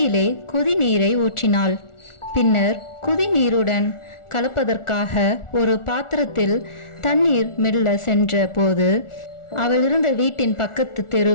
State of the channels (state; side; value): late; right; 1.4 ms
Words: கொதிநீரை ஊற்றினாள். பின்னர் குதிநீருடன் கலப்பதற்காக ஒரு பாத்திரத்தில் தண்ணீர் மெல்ல சென்ற போது அவள் இருந்த வீட்டின் பக்கத்து